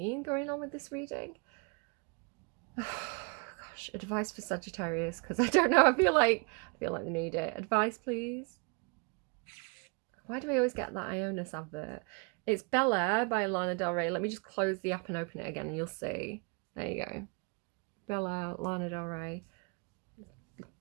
going on with this reading. Gosh, advice for Sagittarius, because I don't know. I feel like they need it. Advice, please. Why do I always get that Ionis advert? It's Bel Air by Lana Del Rey. Let me just close the app and open it again, and you'll see. There you go. Bel Air, Lana Del Rey.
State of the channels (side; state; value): left; quieter; 34.1 dB